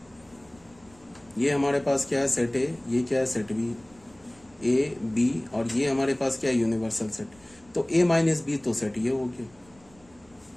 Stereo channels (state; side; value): noise; right; rumble, 29 dB below the sound